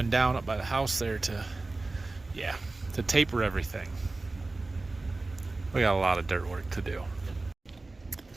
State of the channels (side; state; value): left; quieter; 3.3 dB